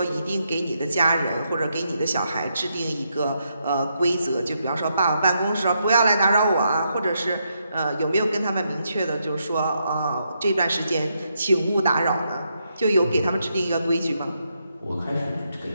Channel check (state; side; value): inverted; both; correlation -0.80